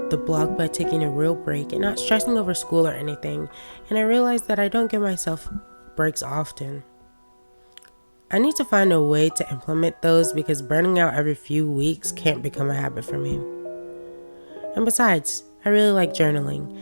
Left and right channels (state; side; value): inverted; both; correlation -1.00